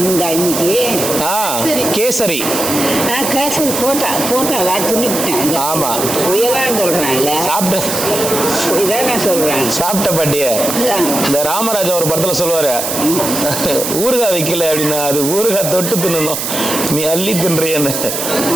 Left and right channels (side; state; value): right; noise; hiss, 3 dB below the sound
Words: உண்டா இன்னைக்கு? கேசரி. கேசரி போட்டா துணிவிட்டேன். ஆமா, புயலான்னு சொல்றேன்ல. இதான் சொல்றேன். சாப்பிட்ட பாட்டிய இந்த ராமராஜா ஒரு படத்துல சொல்லுவாரு, ஊறுகாய் வைக்கல அப்படின்னா அது ஊறுகாய் தொட்டு தின்னணும், நீ அள்ளி தின்றியன்னு.